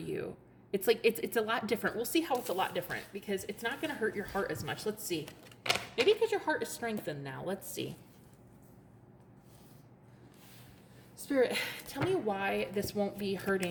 It's like, it's a lot different. We'll see how it's a lot different, because it's not going to hurt your heart as much. Let's see. Maybe because your heart is strengthened now. Let's see. Spirit, tell me why this won't be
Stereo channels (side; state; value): both; identical; correlation 1.00